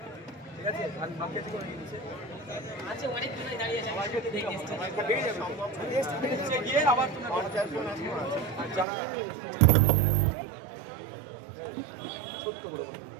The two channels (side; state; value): left; drops out; at 8.8 s